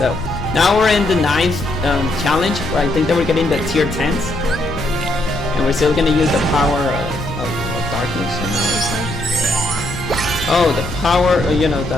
now we're in the 9th challenge, where I think that we're getting the tier 10s, and we're still gonna use the power of darkness on our side. Oh, the power, you know,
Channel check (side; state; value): left; noise; rumble, 10 dB below the sound